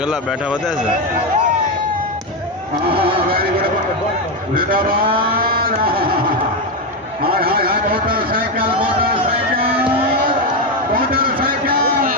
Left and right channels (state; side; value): normal; both; correlation 0.09